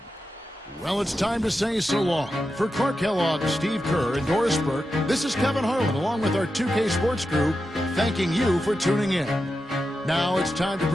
Well, it's time to say so long. For Clark Kellogg, Steve Kerr, and Doris Burke, this is Kevin Harlan along with our 2K Sports crew, thanking you for tuning in. Now it's time to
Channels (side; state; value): both; normal; correlation 0.89